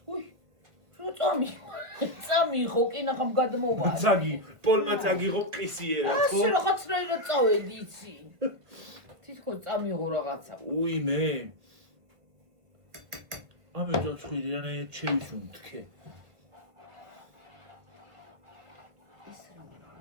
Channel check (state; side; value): late; left; 1.5 ms